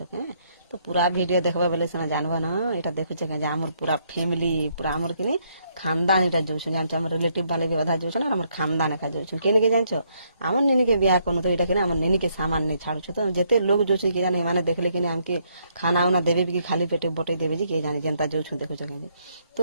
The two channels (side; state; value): both; inverted; correlation -0.72